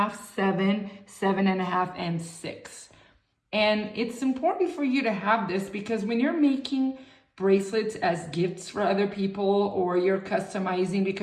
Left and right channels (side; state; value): both; identical; correlation 1.00